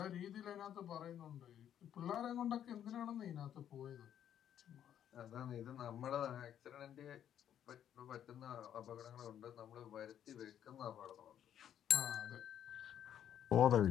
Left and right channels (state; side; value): quieter; right; 10.0 dB